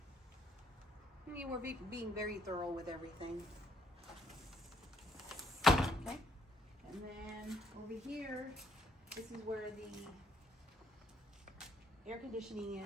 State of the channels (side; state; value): both; normal; correlation 0.70